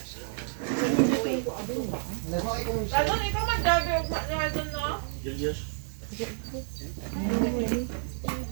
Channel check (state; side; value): silent; left; 58 dB below the other